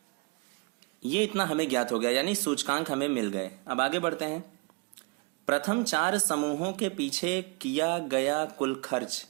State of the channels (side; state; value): left; quieter; 30.0 dB